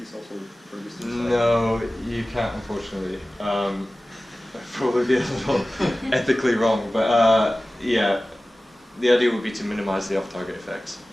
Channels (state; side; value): normal; both; correlation 0.97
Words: cells will produce inside? No, you can't, unfortunately. That'd probably be a little ethically wrong, but yeah, the idea would be to minimize the off-target effects.